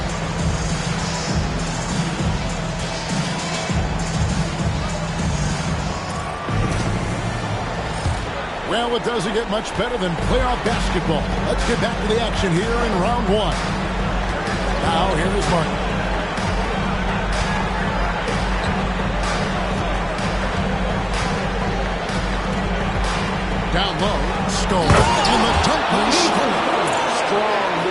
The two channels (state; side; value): identical; both; correlation 1.00